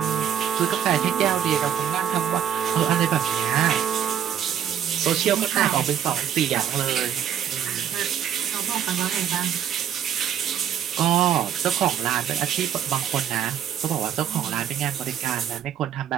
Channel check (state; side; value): quieter; left; 9.3 dB